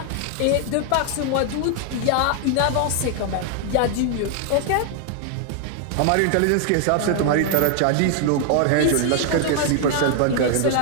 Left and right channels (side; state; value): both; different; correlation 0.00